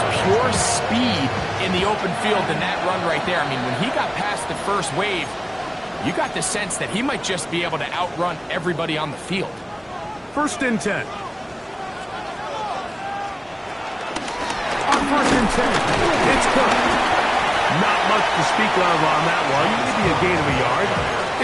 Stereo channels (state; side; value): identical; both; correlation 1.00